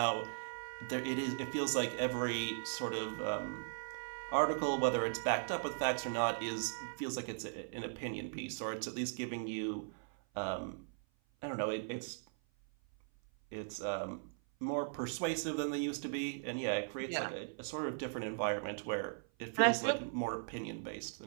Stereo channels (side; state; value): left; silent; 52 dB below the other